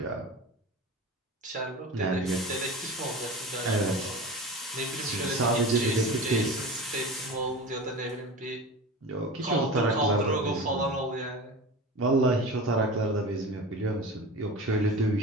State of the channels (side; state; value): both; normal; correlation 0.31